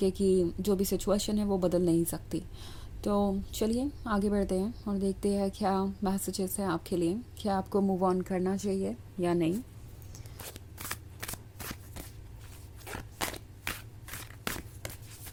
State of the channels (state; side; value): identical; both; correlation 1.00